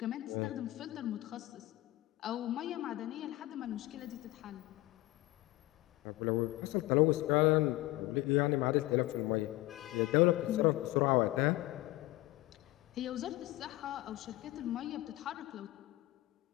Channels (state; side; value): quieter; right; 18.5 dB